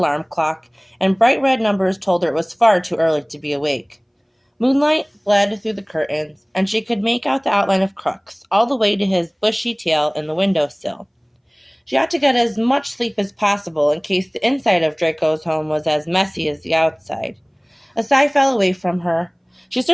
clock, and bright red numbers told her it was far too early to be awake. Moonlight bled through the curtains, and she could make out the outline of Crooks, all the way to his bushy tail in the window-sill. She ought to get as much sleep as possible in case the inside of Draco's home was as messy as the outside. A sigh fell away from her. She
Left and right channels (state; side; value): identical; both; correlation 1.00